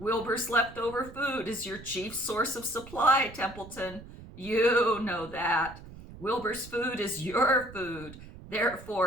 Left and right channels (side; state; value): right; noise; rumble, 16 dB below the sound